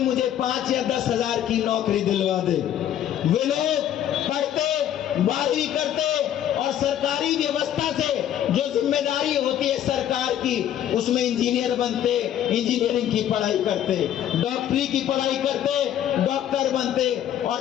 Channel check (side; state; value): right; quieter; 10.8 dB